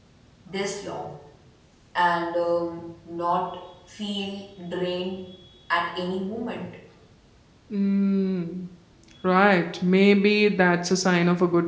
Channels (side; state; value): both; identical; correlation 1.00